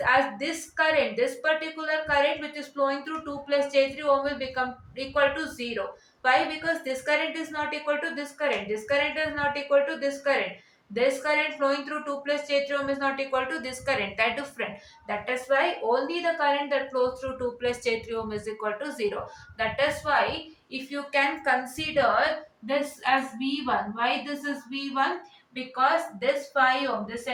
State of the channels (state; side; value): identical; both; correlation 1.00